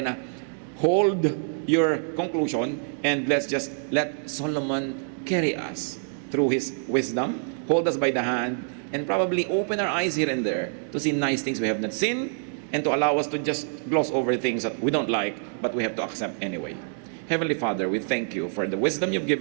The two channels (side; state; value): left; silent; digital silence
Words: na hold your conclusion and let's just let Solomon carry us through his wisdom, hold us by the hand, and probably open our eyes here and there to see nice things we have not seen and to allow us to just gloss over things that we don't like but we have to accept anyway. Heavenly Father, we thank you for the wisdom you've